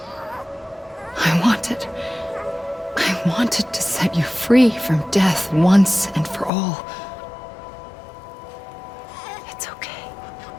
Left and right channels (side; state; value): right; drops out; at 6.5 s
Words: I wanted to set you free from death once and for all. It's okay.